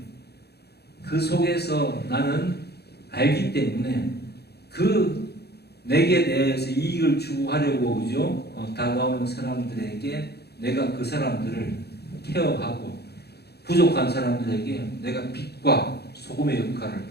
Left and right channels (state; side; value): late; right; 0.47 ms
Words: 그 속에서 나는 알기 때문에 그 내게 대해서 이익을 추구하려고 그죠? 다가오는 사람들에게 내가 그 사람들을 케어하고 부족한 사람들에게 내가 빛과 소금의 역할을